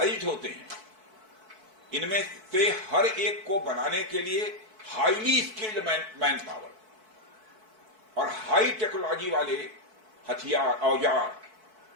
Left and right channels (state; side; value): late; left; 4.6 ms